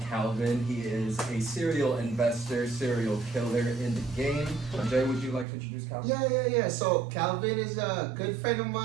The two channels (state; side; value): drops out; left; at 5.5 s